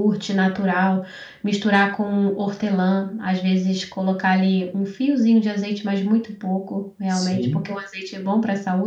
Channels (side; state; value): both; identical; correlation 1.00